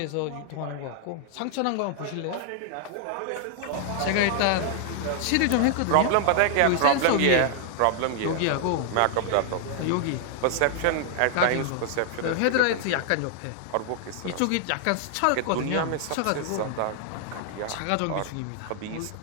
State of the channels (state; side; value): different; both; correlation 0.00